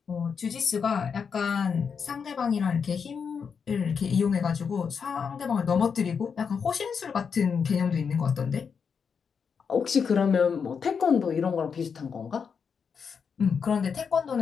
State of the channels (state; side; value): quieter; right; 6.3 dB